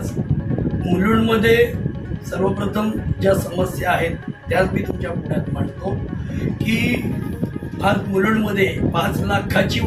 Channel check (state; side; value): identical; both; correlation 1.00